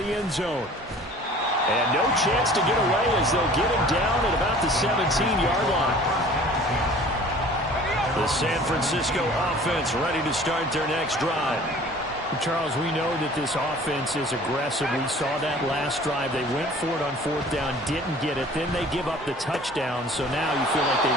end zone. And no chance to get away as they'll get him down at about the 17-yard line. The San Francisco offense ready to start their next drive. Charles, we know that this offense is aggressive. We saw that last drive. They went for it on fourth down, didn't get it. Then they give up the touchdown. So now you feel like they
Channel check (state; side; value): normal; both; correlation 0.48